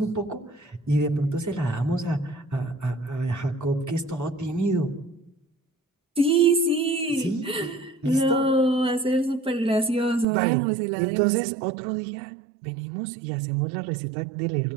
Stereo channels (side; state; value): left; drops out; at 10.2 s